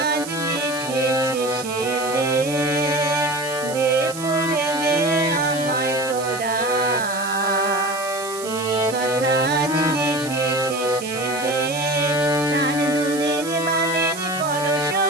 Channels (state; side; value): noise; right; hiss, 12 dB below the sound